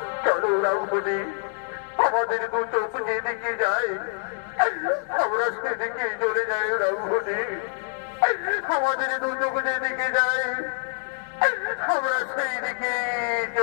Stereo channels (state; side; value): silent; right; digital silence